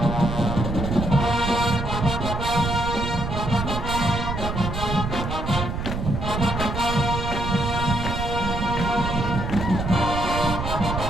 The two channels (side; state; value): right; noise; rumble, 4 dB below the sound